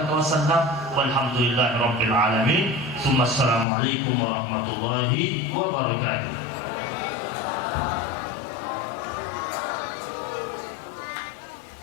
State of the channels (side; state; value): right; drops out; at 3.7 s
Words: wa sallam walhamdulillahi rabbil alamin. Tsumma assalamu alaikum warahmatullahi wabarakatuh.